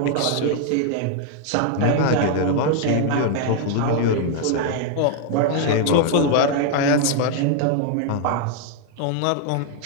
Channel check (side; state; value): both; different; correlation 0.00